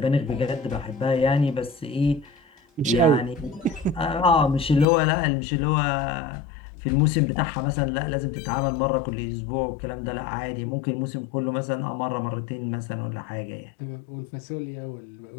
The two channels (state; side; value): drops out; right; at 4.9 s